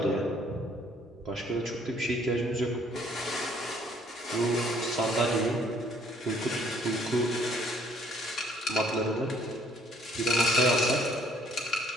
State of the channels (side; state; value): both; normal; correlation 0.62